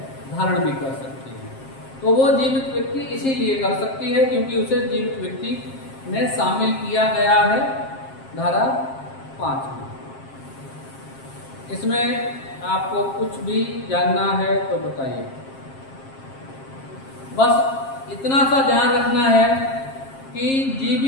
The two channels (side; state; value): right; late; 7.5 ms